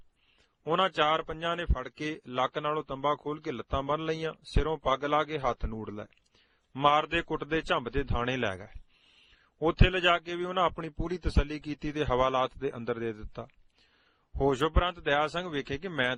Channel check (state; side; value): identical; both; correlation 1.00